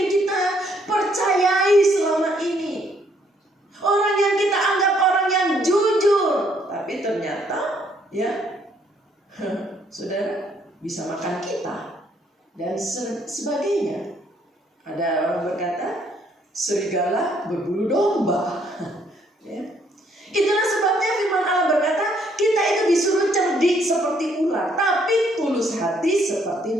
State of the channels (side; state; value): both; normal; correlation 0.68